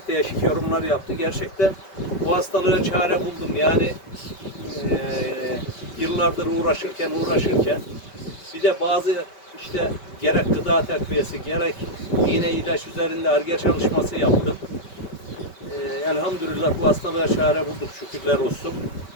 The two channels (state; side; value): late; right; 5.2 ms